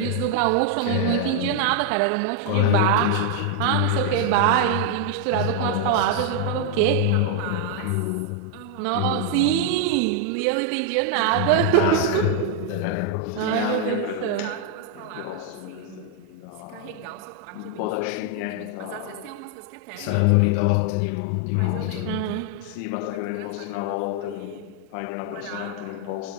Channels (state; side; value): different; both; correlation 0.00